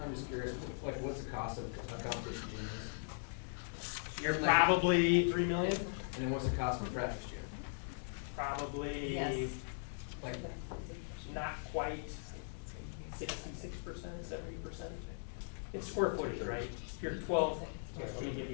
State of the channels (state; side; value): silent; right; digital silence